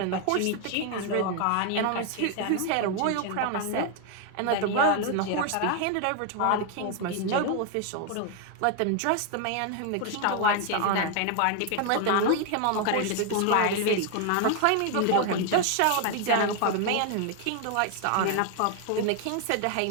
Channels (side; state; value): both; different; correlation 0.01